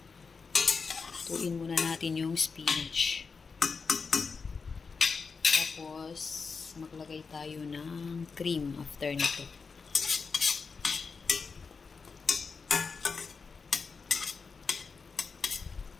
Tuin muna natin yung spinach. Tapos maglagay tayo ng cream after nito.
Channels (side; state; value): right; quieter; 5.0 dB